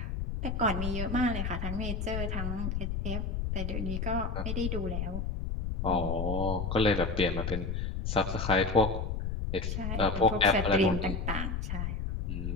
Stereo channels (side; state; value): left; noise; rumble, 2 dB below the sound